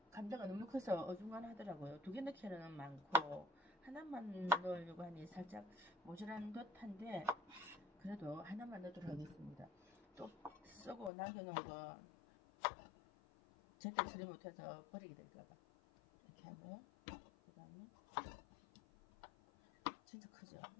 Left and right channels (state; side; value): drops out; right; at 11.1 s